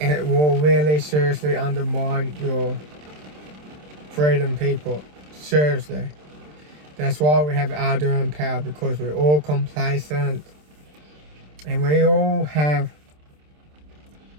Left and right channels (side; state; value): left; late; 27 ms